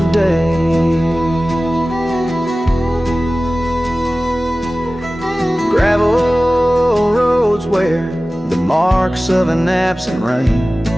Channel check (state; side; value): normal; both; correlation 0.97